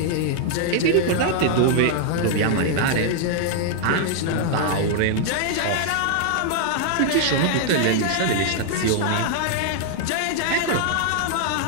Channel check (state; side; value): different; both; correlation -0.01